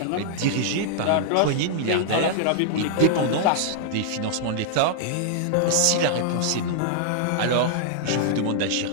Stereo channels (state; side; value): different; both; correlation -0.01